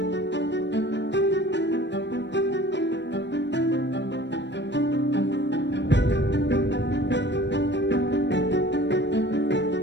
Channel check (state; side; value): late; right; 0.52 ms